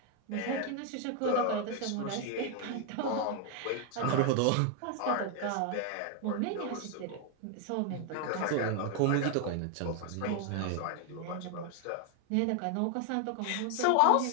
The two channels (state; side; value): different; both; correlation 0.00